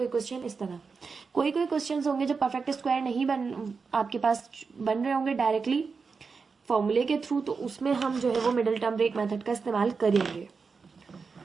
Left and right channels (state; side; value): quieter; left; 5.0 dB